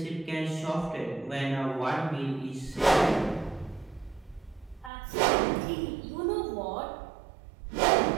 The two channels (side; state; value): left; drops out; at 4.9 s